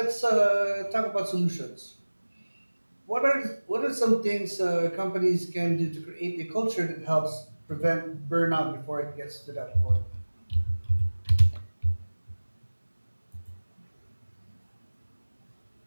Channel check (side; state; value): both; inverted; correlation -1.00